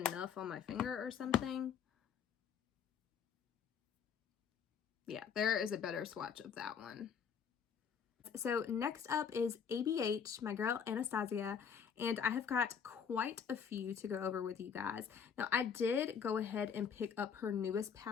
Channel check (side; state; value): right; quieter; 7.1 dB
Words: on my finger or something. Yeah, there is a better swatch of that one. So next up is ABH, my girl Anastasia, and I have got quite a few to go over with you guys. Now, I did go ahead and pick up her newest